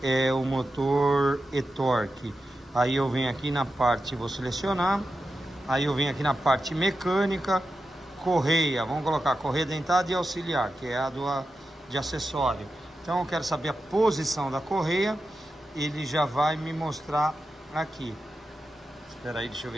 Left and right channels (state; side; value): normal; both; correlation 0.90